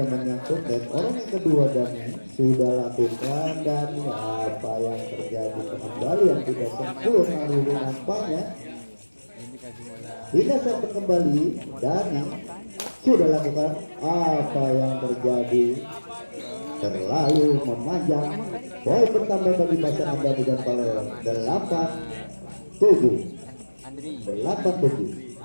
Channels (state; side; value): inverted; both; correlation -1.00